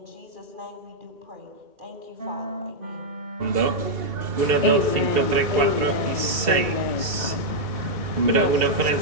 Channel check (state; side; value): late; left; 2.7 ms